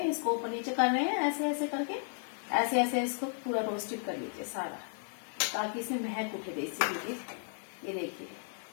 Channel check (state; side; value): silent; right; 55 dB below the other